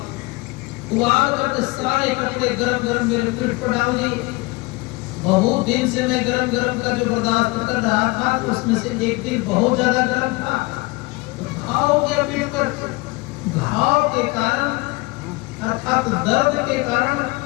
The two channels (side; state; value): right; quieter; 24.2 dB